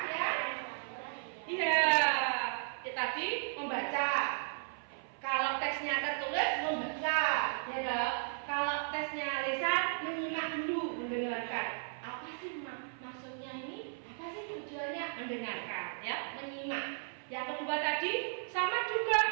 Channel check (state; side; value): silent; left; 54 dB below the other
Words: ya. Iya, tadi membaca. Kalau teksnya tertulis membaca, ya dong. Kalau tesnya lisan menyimak dulu, mendengarkan. Apa sih maksudnya ini? Apa sih tujuannya? Mendengarkan, ya, menyimak. Yang kedua tadi sama